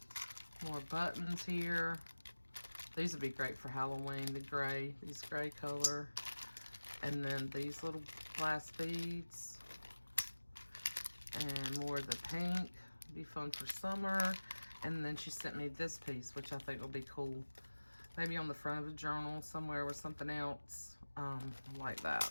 More buttons here. These would be great for Halloween, the gray, these gray color. And then these little glass beads. And more of the pink. Be fun for summer. And then she sent me this piece, which I think will be cool. Maybe on the front of a journal somewhere with something else like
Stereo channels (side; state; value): both; inverted; correlation -1.00